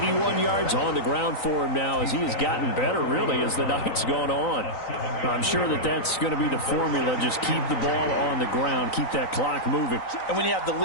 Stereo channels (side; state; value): right; late; 3.9 ms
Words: yards on the ground for him now as he has gotten better, really, as the night's gone on. I'm sure that that's going to be the formula. Just keep the ball on the ground. Keep that clock moving. And when you have the